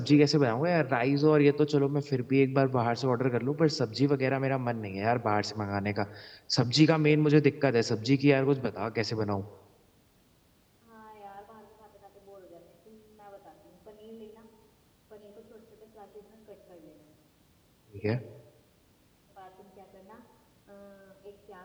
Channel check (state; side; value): identical; both; correlation 1.00